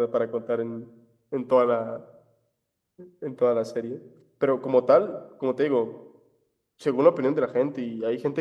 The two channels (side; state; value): both; identical; correlation 1.00